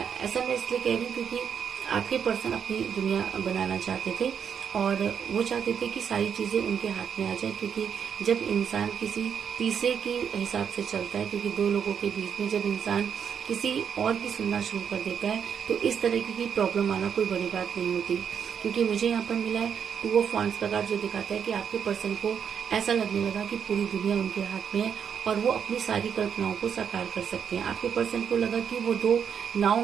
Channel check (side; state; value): left; quieter; 7.6 dB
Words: मैं इसलिए कह रही हूँ क्योंकि आपके पर्सन अपनी दुनिया बनाना चाहते थे और वो चाहते थे कि सारी चीजें उनके हाथ में आ जाए, क्योंकि जब इंसान किसी तीसरे के हिसाब से चलता है, क्योंकि दो लोगों के बीच में जब इंसान किसी और की सुनना शुरू कर देता है तो इस तरह की प्रॉब्लम आना कोई बड़ी बात नहीं होती। क्योंकि मुझे यहाँ पर मिला है 2 ऑफ वांड्स का कार्ड, जो दिखाता है कि आपके पर्सन को ऐसा लगने लगा कि पूरी दुनिया उनके हाथ में है और वो अपनी सारी कल्पनाओं को साकार कर सकते हैं। आपके पर्सन को लगा कि वो 2